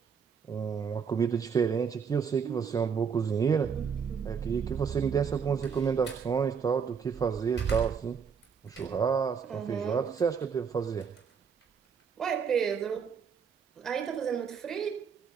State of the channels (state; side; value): quieter; left; 6.4 dB